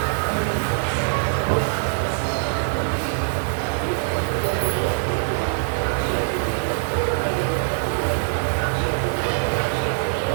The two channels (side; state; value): left; silent; 64 dB below the other